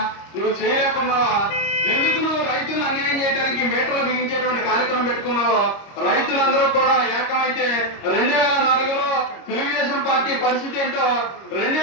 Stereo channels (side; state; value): right; late; 25 ms